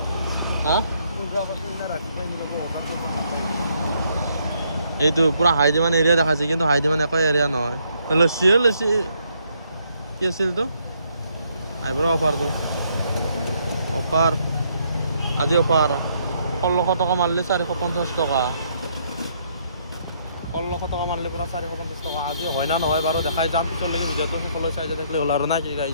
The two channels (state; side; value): inverted; both; correlation -0.71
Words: হা এইটো পুরা হাই ডিমান্ড এরিয়া দেখাচ্ছে কিন্তু হাই ডিমান্ড একো এরিয়া নহয় লসি কি আছিল তো আইব্রো অফার আজি অফার 1600 টাকা মারলে 450 টাকা 1600 টাকা মারলে পুরা 450 টাকা আজি হয় না নহয় বাৰু দেখাই যাম পিছলৈকে ভিডিওটো সকলো চাই যা দেখলে হল আৰু না কি